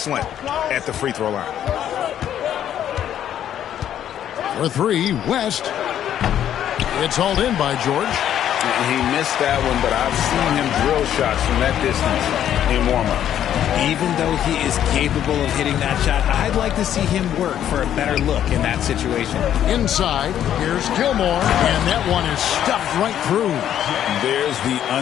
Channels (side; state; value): right; quieter; 10.5 dB